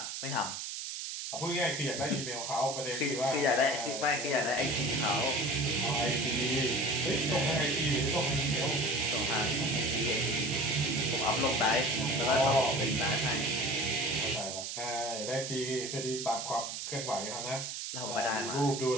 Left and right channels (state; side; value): noise; right; hiss, 6 dB below the sound